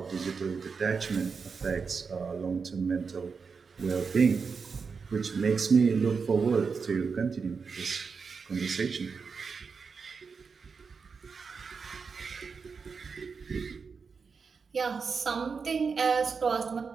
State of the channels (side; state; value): left; quieter; 5.3 dB